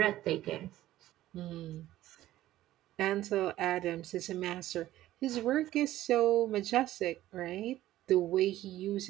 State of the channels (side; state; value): left; quieter; 14.6 dB